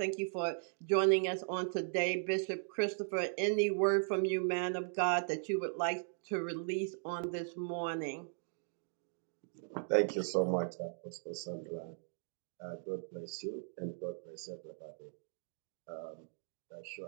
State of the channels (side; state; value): left; silent; digital silence